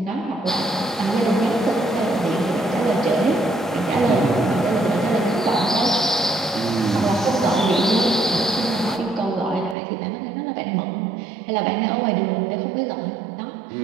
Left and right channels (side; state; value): left; drops out; at 9.8 s